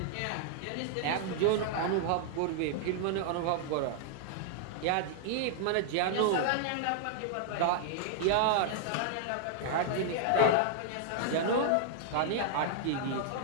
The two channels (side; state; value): both; different; correlation -0.01